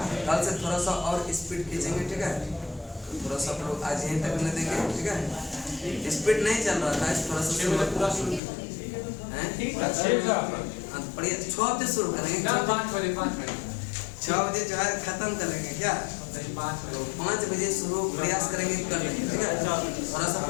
कल से थोड़ा सा और स्पीड खींचेंगे, ठीक है? थोड़ा सा लोग आज यहीं तक न देंगे, ठीक है? स्पीड नहीं चल रहा था, थोड़ा सा बढ़िया 6 हफ्ते शुरू करेंगे। 5 बजे 5 बजे 6 बजे जो है खत्म करेंगे क्या? 5 बजे शुरू प्रयास करेंगे कर लेंगे, ठीक है? थोड़ा सा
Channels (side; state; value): right; drops out; at 8.4 s